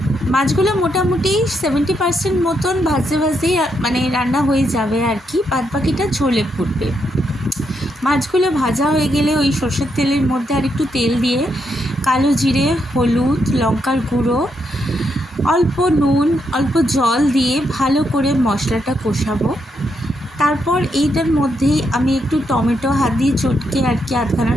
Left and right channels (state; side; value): normal; both; correlation 0.79